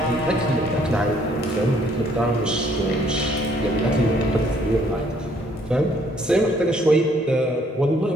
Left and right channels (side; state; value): both; normal; correlation 0.65